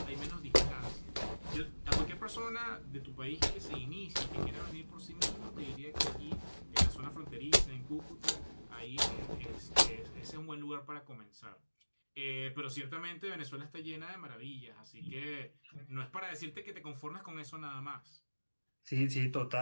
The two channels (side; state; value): both; inverted; correlation -1.00